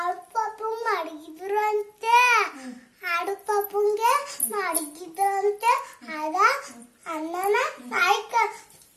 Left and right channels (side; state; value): both; identical; correlation 1.00